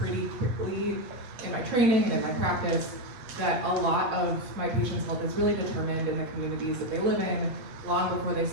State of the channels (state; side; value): late; left; 8.3 ms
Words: quickly in my training and in my practice that a lot of my patients' health is really determined in the communities that they live in long before they